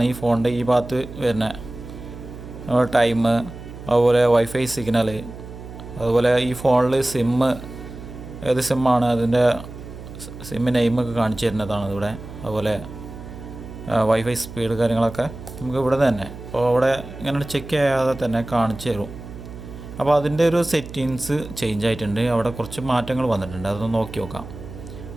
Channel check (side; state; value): right; noise; hum, 13 dB below the sound